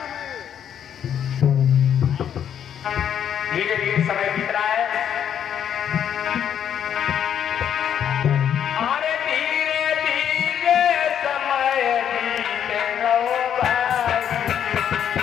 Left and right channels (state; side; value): quieter; right; 9.1 dB